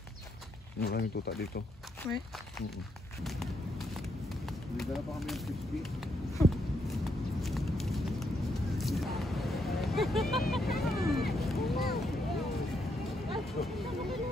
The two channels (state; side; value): normal; both; correlation 0.77